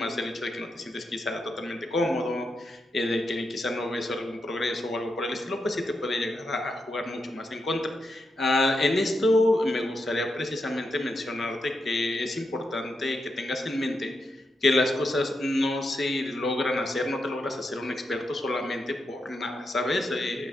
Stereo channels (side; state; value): both; normal; correlation 0.85